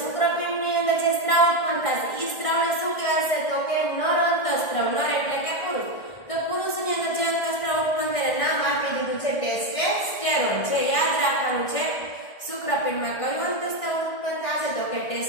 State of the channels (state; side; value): late; right; 1.6 ms